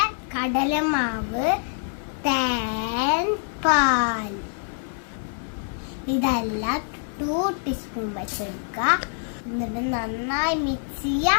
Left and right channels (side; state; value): right; silent; digital silence